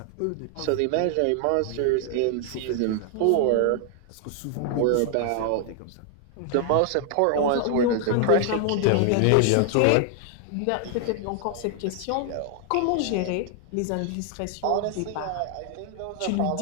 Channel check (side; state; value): both; different; correlation 0.00